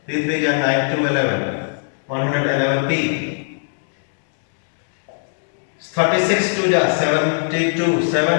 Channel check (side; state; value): right; silent; digital silence